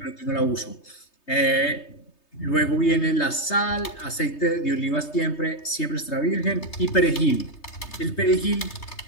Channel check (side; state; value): right; late; 3.3 ms